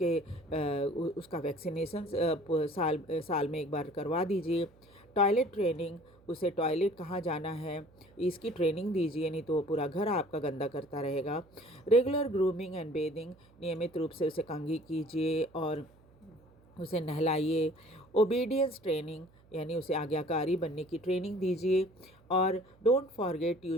वैक्सीनेशन साल में एक बार करवा दीजिए। टॉयलेट ट्रेनिंग उसे टॉयलेट कहाँ जाना है इसकी ट्रेनिंग दीजिए, नहीं तो वो पूरा घर आपका गंदा करता रहेगा। रेगुलर ग्रूमिंग एंड बेदिंग, नियमित रूप से उसे कंघी कीजिए और उसे नहलाइए। ओबीडियंस ट्रेनिंग, यानी उसे आज्ञाकारी बनने की ट्रेनिंग दीजिए। और don't forget you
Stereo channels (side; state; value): right; noise; hum, 28 dB below the sound